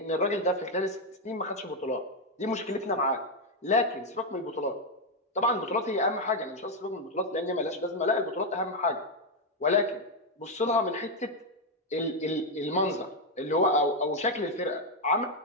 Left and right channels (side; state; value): both; normal; correlation 0.03